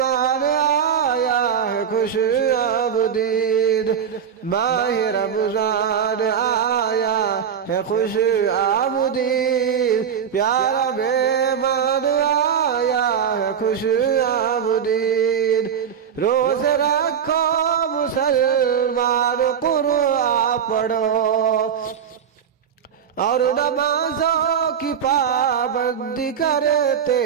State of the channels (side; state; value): left; quieter; 7.9 dB